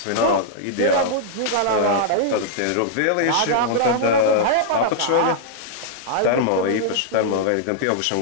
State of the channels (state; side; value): different; both; correlation -0.01